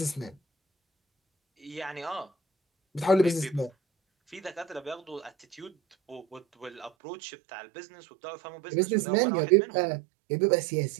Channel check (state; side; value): drops out; left; at 6.9 s